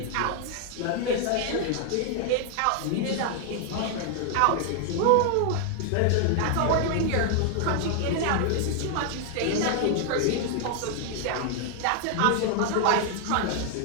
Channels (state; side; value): different; both; correlation 0.00